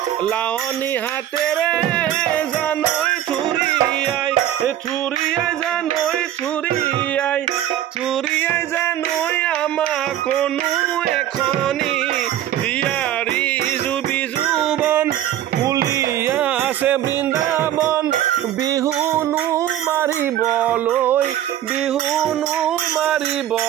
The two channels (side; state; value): left; quieter; 12.0 dB